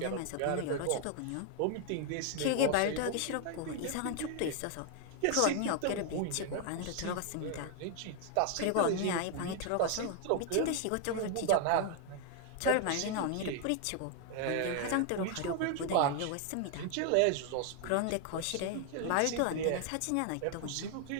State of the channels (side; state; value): both; different; correlation 0.00